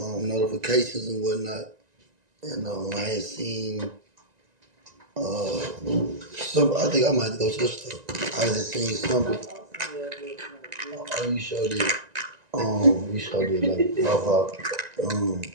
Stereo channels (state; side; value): late; left; 1.9 ms